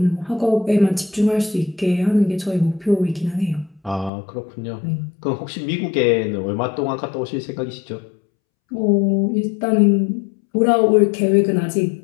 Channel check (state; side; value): drops out; right; at 4.1 s